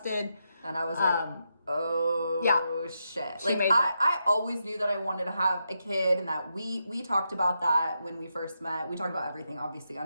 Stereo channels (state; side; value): inverted; both; correlation -0.84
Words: And I was like, oh, yeah. Shit. Like, I always knew that I wanted to have a kid, and that we talked about that when we first met. We talked about everything, obviously,